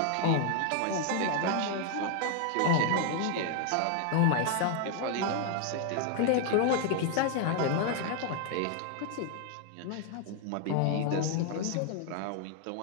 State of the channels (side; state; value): both; different; correlation 0.00